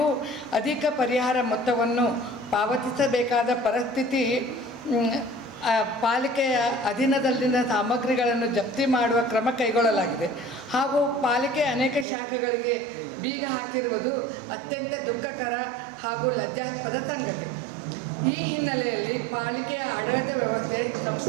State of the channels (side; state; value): left; drops out; at 12.1 s